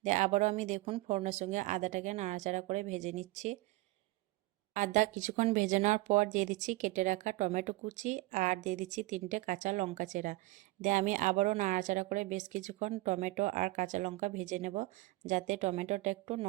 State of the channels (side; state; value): left; quieter; 20.1 dB